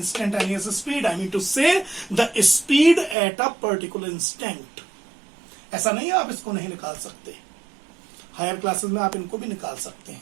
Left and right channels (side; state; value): left; drops out; at 3.2 s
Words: speed. I mean to say the speed at a particular instant. ऐसा नहीं है आप इसको नहीं निकाल सकते. Higher classes में आप इनको भी निकाल सकते